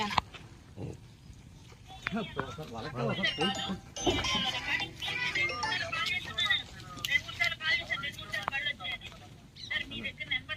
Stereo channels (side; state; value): both; identical; correlation 1.00